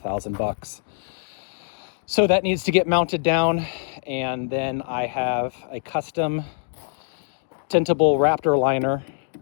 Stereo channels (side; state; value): right; silent; digital silence